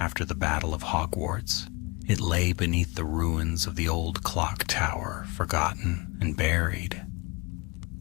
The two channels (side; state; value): right; quieter; 26.9 dB